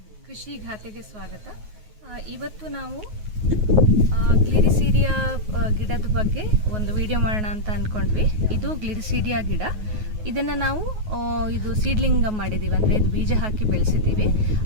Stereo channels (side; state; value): left; late; 9.4 ms